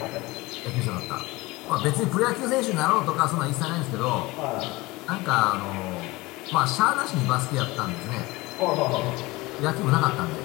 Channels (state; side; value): quieter; right; 21.6 dB